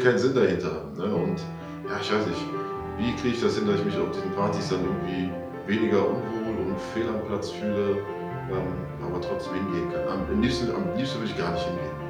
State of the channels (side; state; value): both; identical; correlation 1.00